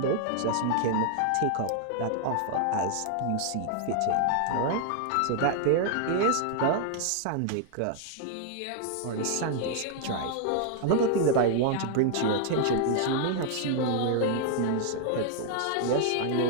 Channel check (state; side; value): different; both; correlation 0.00